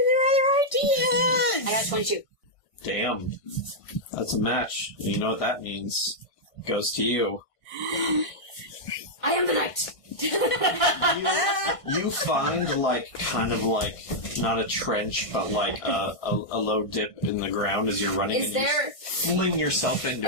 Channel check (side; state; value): right; late; 1.5 ms